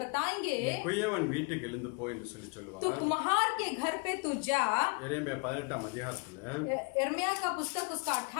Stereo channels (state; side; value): quieter; right; 33.4 dB